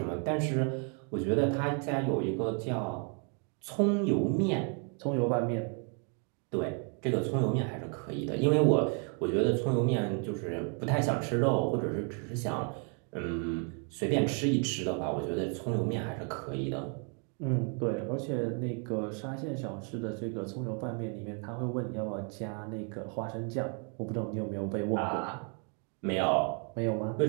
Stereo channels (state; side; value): quieter; left; 39.4 dB